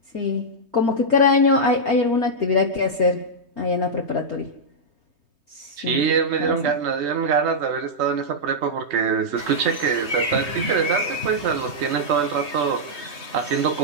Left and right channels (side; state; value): left; late; 3.2 ms